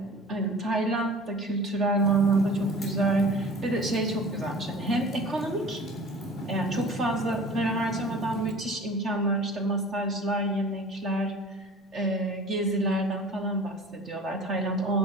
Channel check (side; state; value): both; normal; correlation 0.43